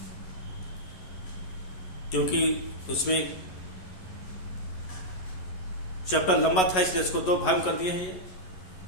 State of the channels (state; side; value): late; right; 11 ms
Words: क्योंकि उसमें चैप्टर लंबा था इसलिए इसको 2 भाग कर दिए हैं। ये